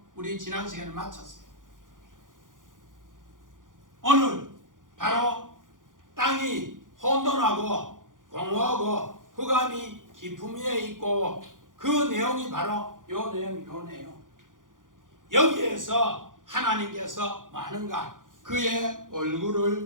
우리 지난 시간에 마쳤어요. 오늘 바로 땅이 혼돈하고 공허하고 흑암이 깊음 위에 있고 그 내용이 바로 요 내용. 여기에서 하나님께서 많은가? 그의 얼굴을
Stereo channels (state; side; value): late; left; 0.89 ms